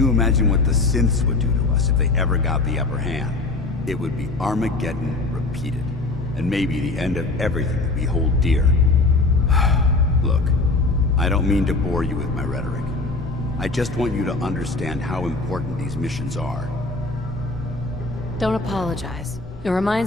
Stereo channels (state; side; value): quieter; right; 3.3 dB